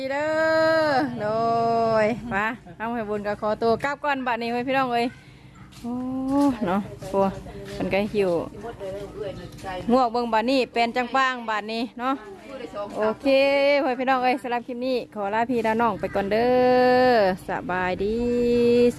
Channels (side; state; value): both; identical; correlation 1.00